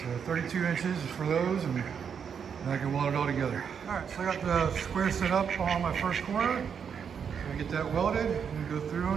32 inches is for those, and then I can weld it all together. All right, so I got the square set up on my first corner. I get that welded and go through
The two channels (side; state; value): left; quieter; 7.1 dB